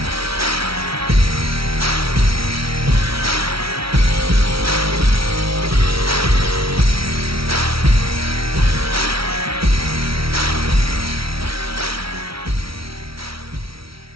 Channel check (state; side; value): late; left; 0.75 ms